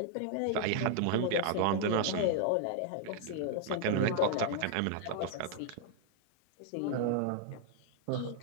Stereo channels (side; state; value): both; different; correlation 0.00